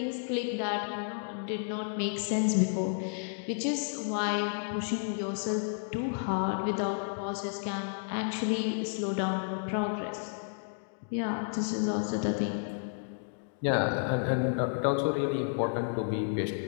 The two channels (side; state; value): right; silent; digital silence